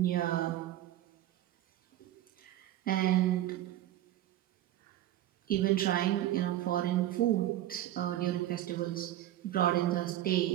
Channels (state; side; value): quieter; left; 13.4 dB